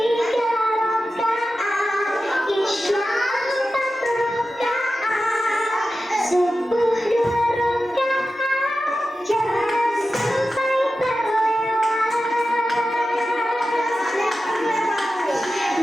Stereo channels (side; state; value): both; normal; correlation 0.93